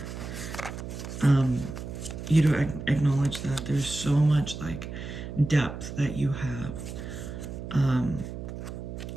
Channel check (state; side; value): noise; right; hum, 8 dB below the sound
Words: you to acknowledge that there's so much like depth that you have